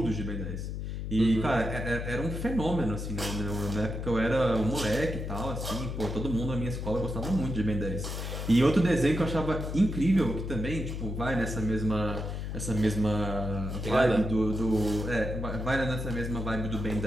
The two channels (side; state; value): left; noise; hum, 5 dB below the sound